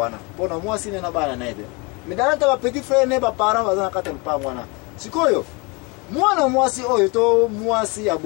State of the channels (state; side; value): quieter; right; 28.6 dB